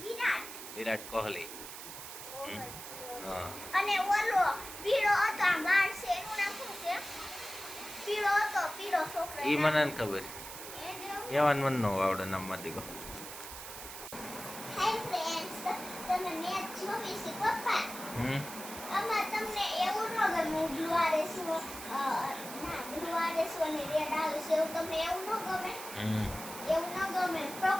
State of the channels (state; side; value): noise; right; hiss, 11 dB below the sound